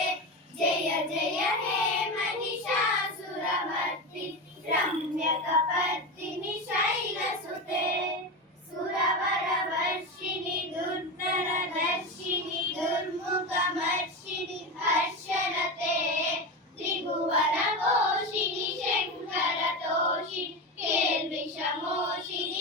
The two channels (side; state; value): both; normal; correlation 0.20